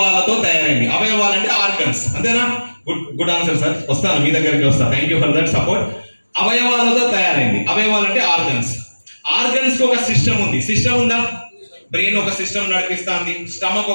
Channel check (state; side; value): inverted; both; correlation -1.00